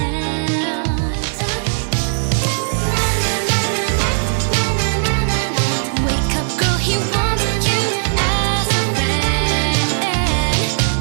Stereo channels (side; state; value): left; silent; digital silence